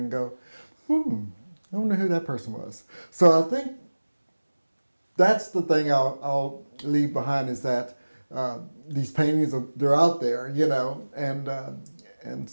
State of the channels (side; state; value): both; inverted; correlation -1.00